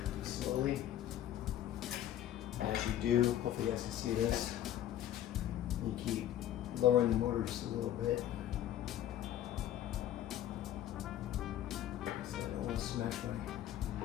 slowly. And as you do, hopefully you guys can see this, you keep lowering the motor just a little bit. So I don't want to smash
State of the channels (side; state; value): right; quieter; 11.9 dB